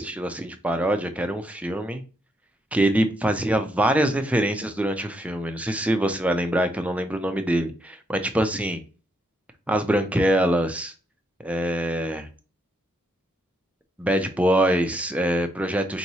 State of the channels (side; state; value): both; normal; correlation 0.76